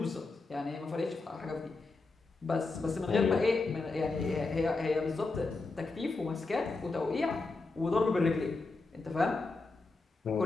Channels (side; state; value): right; quieter; 3.6 dB